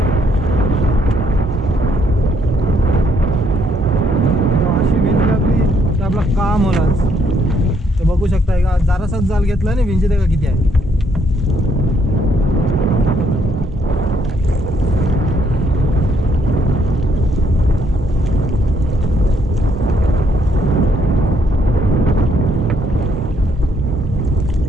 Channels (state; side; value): normal; both; correlation 0.71